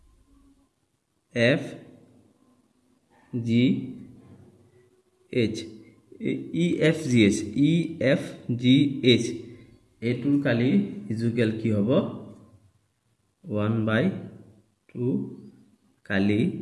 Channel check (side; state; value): both; identical; correlation 1.00